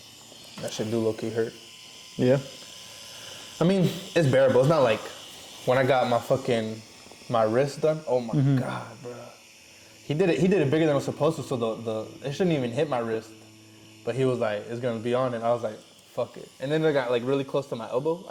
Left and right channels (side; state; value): both; identical; correlation 1.00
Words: That shit do low-key hurt. Yeah. I mean, it's bearable. It's not like when I got my wrist done. Oh my God, bro. He did it bigger than it was supposed to, so it shouldn't even hit my wrist. But he was like, it's gonna be on it. I was like, fuck it. And then it got like really close to my elbow.